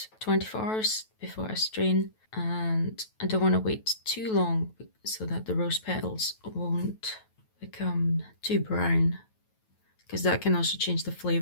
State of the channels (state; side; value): late; right; 9.2 ms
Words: 24 hours before I strain, and I don't want to wait too long so that the rose petals won't become too brown, because that can also change the